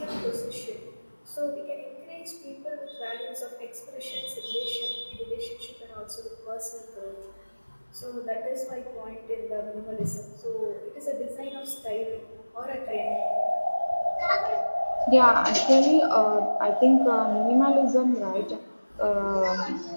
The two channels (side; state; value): both; inverted; correlation -1.00